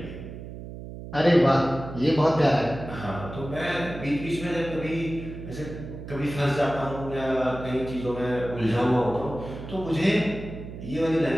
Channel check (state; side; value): noise; right; hum, 11 dB below the sound